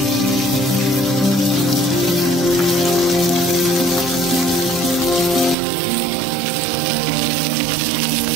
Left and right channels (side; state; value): left; drops out; at 5.6 s